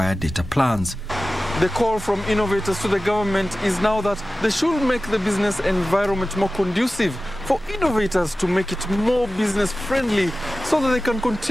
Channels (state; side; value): normal; both; correlation 0.95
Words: data plans. The call from innovators to the government is now that they should make the business environment more conducive for innovators to make it more business friendly so that they can